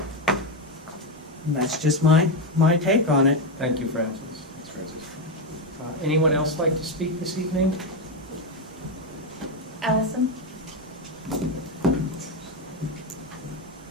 And that's just my take on it. Thank you, Francis. Thanks, Francis. Anyone else like to speak this evening? Allison?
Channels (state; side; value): normal; both; correlation 0.08